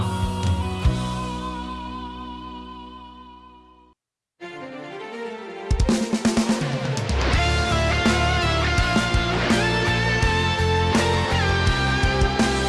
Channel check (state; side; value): identical; both; correlation 1.00